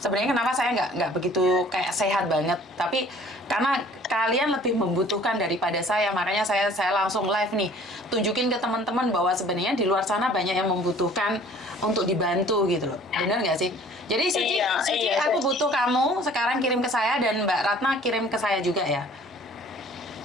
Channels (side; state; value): both; normal; correlation 0.52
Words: kenapa saya nggak begitu kayak sehat banget, tapi karena kalian lebih membutuhkan daripada saya, makanya saya langsung live nih, tunjukin ke teman-teman bahwa sebenarnya di luar sana banyak yang membutuhkan untuk dibantu gitu loh. Bener nggak sih? Jadi Suci, aku butuh kamu sekarang kirim ke saya, dan Mbak Ratna kirim ke saya juga ya.